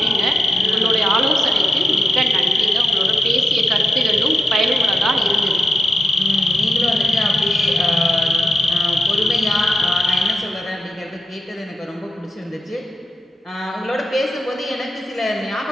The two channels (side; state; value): both; normal; correlation 0.88